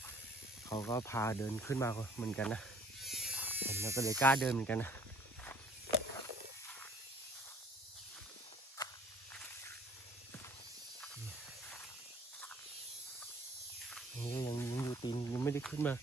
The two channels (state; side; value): normal; both; correlation 0.56